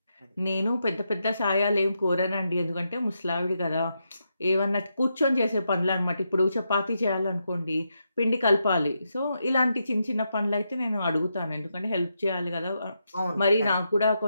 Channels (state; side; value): inverted; both; correlation -0.83